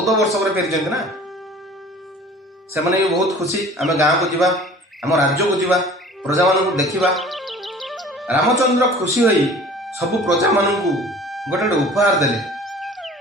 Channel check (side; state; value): both; normal; correlation 0.46